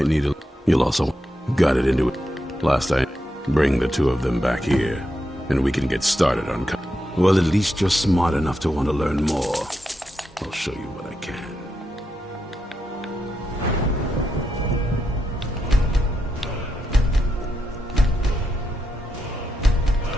need a... You'll also... Got it into it. Last I... Bring the two of them back here. And we can get started on... Well, at least you're smart enough to want to learn more. I'll show you what I can.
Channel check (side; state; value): both; normal; correlation 0.84